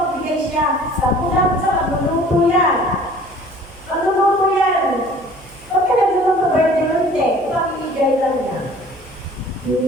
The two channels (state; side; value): noise; right; hum, 24 dB below the sound